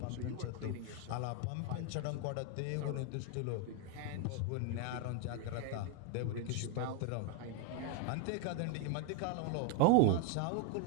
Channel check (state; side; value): different; both; correlation 0.01